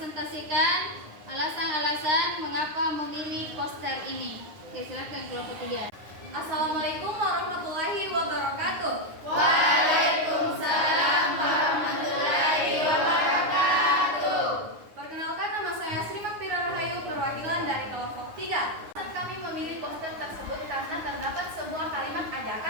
alasan-alasan mengapa memilih poster ini. Oke, silahkan kelompok 3. Assalamualaikum warahmatullahi wabarakatuh. Waalaikumsalam warahmatullahi wabarakatuh. Perkenalkan, nama saya Sri Makfira Rahayu, perwakilan dari kelompok 3. Kami memilih poster tersebut karena terdapat sebuah kalimat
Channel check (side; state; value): left; late; 9.7 ms